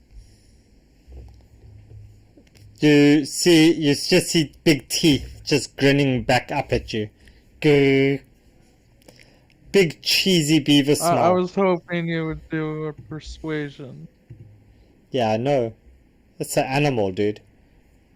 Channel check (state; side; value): identical; both; correlation 1.00